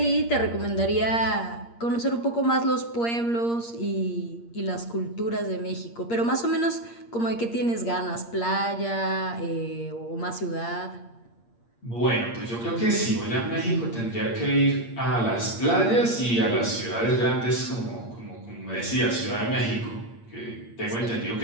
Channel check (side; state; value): right; late; 8.6 ms